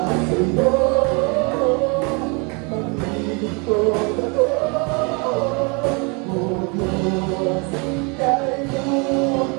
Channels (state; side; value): quieter; left; 31.8 dB